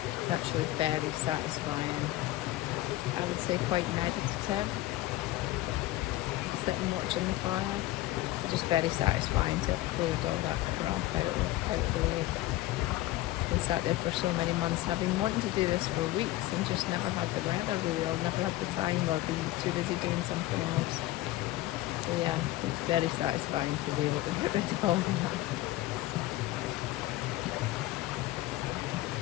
It's actually very satisfying. I would say quite meditative. Sitting watching the fire. It's just very satisfying to clear all that crap out of the way. Been sat there for so many months. I've been wanting to do this for weeks and just never had the weather really, or never had the time, or been too busy doing something else. So yeah, it's very satisfying to be able to put this all on.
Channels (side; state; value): right; quieter; 16.5 dB